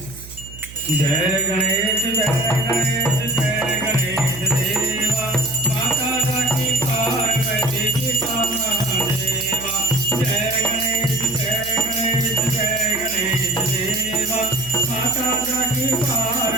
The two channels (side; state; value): right; noise; hum, 16 dB below the sound